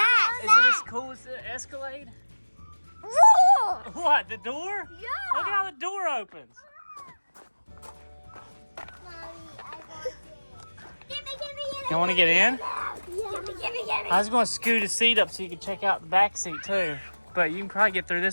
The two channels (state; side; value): inverted; both; correlation -1.00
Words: Is it as cool as the Escalade? Whoa. What, the door? Yeah. Look at how the door opens. You want to get in? I was going to scoot a seat up so you could check out the back seat too. But you can probably get through